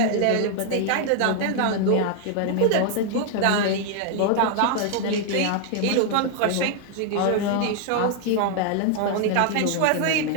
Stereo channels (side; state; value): both; different; correlation 0.00